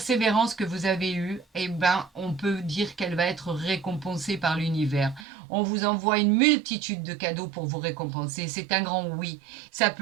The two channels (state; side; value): drops out; left; at 5.2 s